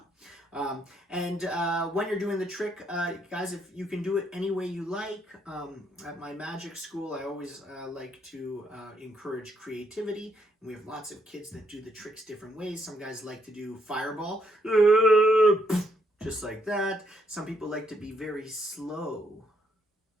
When you're doing the trick, guys, if you can do it any way you like. At my magic school, I always like to encourage creativity. And we have lots of kids that do the tricks different ways. Some guys like to do fireball, just like that. Some people like to be very slow.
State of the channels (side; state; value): both; normal; correlation 0.73